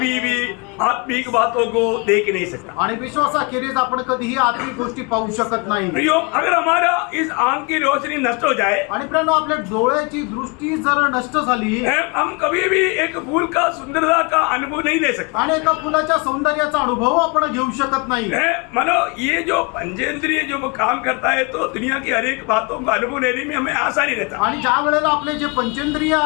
भी आत्मिक बातों को देख नहीं सकता। आणि विश्वासाखेरीज आपण कधीही आत्मिक गोष्टी पाहू शकत नाही. प्रियो, अगर हमारा इस आंख की रोशनी नष्ट हो जाए, आणि प्रियानो, आपल्या डोळ्याची दृष्टी जर नष्ट झाली हम कभी भी एक फूल का सुंदरता का अनुभव नहीं ले सकते। आणि एका फुलाच्या सौंदर्याचा अनुभव आपण घेऊ शकत नाही. मानो ये जो पंचेंद्रिय जो काम करता है तो दुनिया की हर एक बातों का अनुभव लेने में हमें आसानी रहता। आणि ज्या वेळेला आपले जे पंचेंद्रिय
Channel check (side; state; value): right; quieter; 30.8 dB